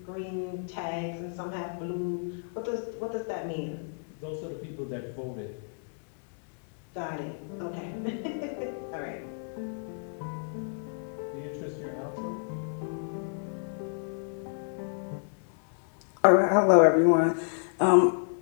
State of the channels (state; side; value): silent; right; digital silence